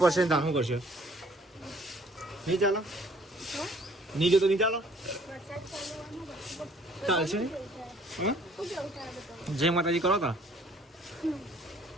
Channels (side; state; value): both; normal; correlation 0.58